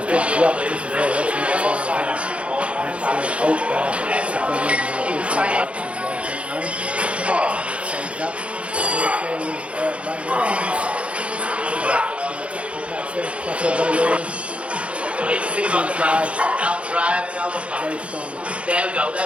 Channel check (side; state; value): left; late; 0.061 ms